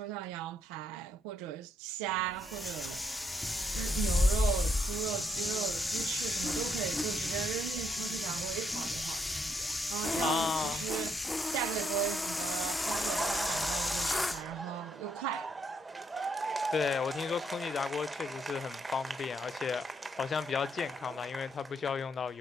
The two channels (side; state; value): both; normal; correlation 0.75